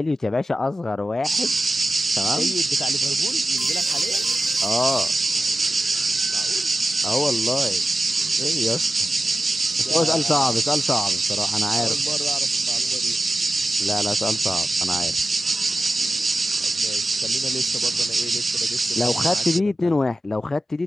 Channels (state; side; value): normal; both; correlation 0.94